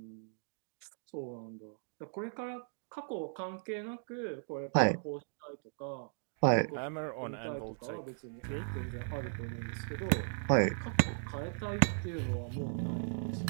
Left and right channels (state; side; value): silent; left; digital silence